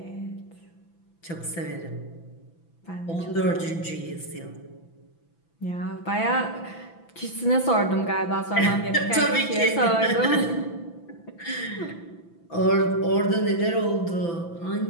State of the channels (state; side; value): late; right; 6.0 ms